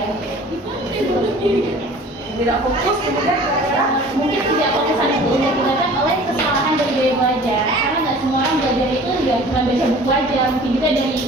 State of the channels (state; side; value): normal; both; correlation 0.46